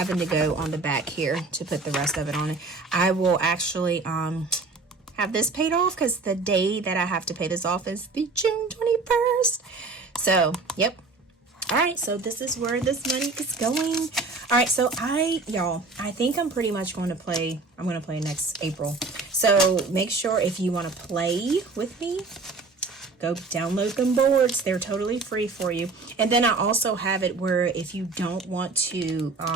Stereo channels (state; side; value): quieter; left; 3.8 dB